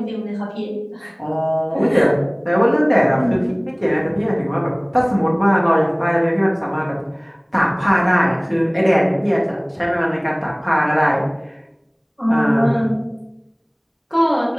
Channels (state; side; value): identical; both; correlation 1.00